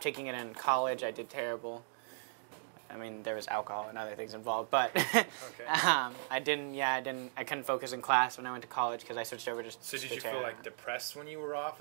taking it in college, I did terrible. I mean, there was alcohol and other things involved, but okay. I couldn't focus in class when I went to college because I switched over to. So did you feel like depressed when you were off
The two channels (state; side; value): silent; left; digital silence